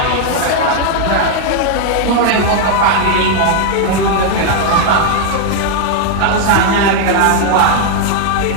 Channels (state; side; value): different; both; correlation 0.00